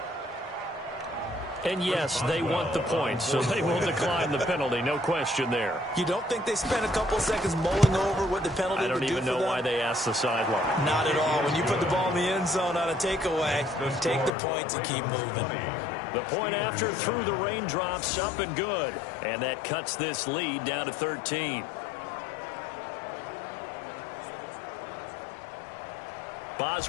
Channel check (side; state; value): right; drops out; at 14.3 s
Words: And yes, they want the points, so they will decline the penalty. No question there. You don't think they spent a couple seconds mulling over what the penalty would do for them? I don't even know why they asked the sideline. Not at all. When you put the ball in the end zone on a takeaway, take the points and keep moving. The point after through the raindrops, up and good. And that cuts this lead down to 13.